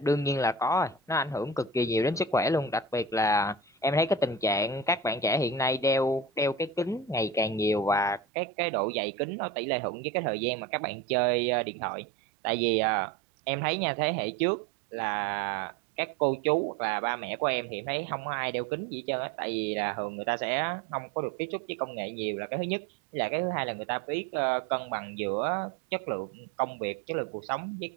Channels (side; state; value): left; drops out; at 8.2 s